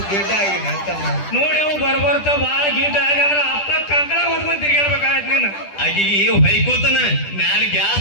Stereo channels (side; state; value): right; late; 10 ms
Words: ಗಿಡ್ಡ ಆಗಿನ ತಮ್ಮ. ನೋಡಿ ಅವ್ ಬರ್ಬರ್ತ ಬಾಳ ಗೀಟ ಆಗಂದ್ರ ಅಪ್ಪ ಕಂಕಣ ಹೊತ್ಕೊಂಡ್ ತಿರ್ಗಾಡ್ಬೇಕಾಗತ್ ನೀನು. ಆಕಿಗೆ ಹೊಯ್ಕೋತನ ಮ್ಯಾಲ